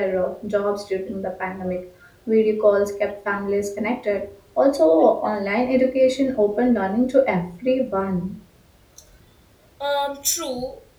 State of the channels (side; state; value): both; identical; correlation 1.00